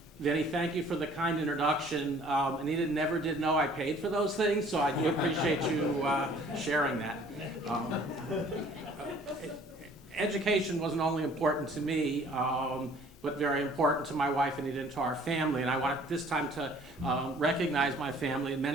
Vinny, thank you for the kind introduction. Anita never did know I paid for those things, so I do appreciate you sharing that. Education wasn't only important to me, but very important to my wife Anita and to our family. And I want this time to recognize my family. And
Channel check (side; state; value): both; normal; correlation 0.54